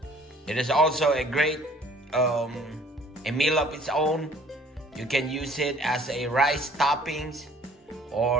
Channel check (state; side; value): normal; both; correlation 0.55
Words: It is also a great a meal of its own. You can use it as a rice toppings,